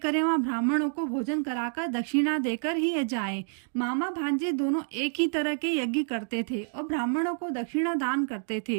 वहाँ ब्राह्मणों को भोजन कराकर दक्षिणा देकर ही जाएं। मामा भांजे दोनों एक ही तरह के यज्ञ करते थे और ब्राह्मणों को दक्षिणा दान करते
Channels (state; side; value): silent; left; 59 dB below the other